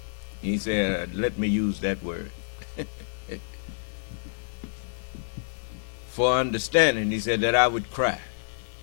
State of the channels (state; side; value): silent; right; 56 dB below the other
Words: He said, let me use that word, for understanding. He said that I would cry